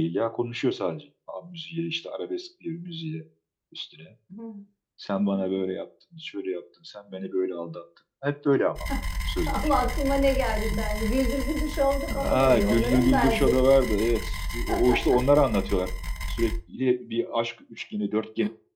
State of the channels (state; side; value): identical; both; correlation 1.00